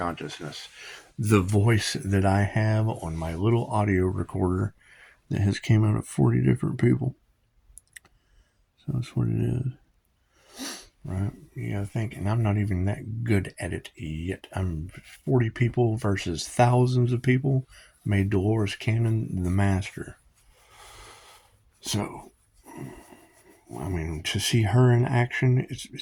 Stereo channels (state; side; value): identical; both; correlation 1.00